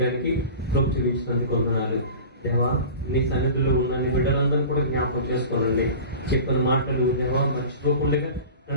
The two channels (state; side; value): inverted; both; correlation -0.36